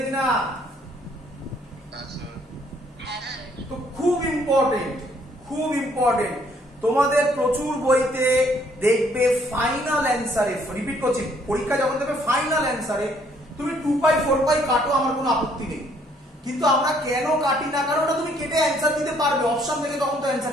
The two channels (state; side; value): normal; both; correlation 0.65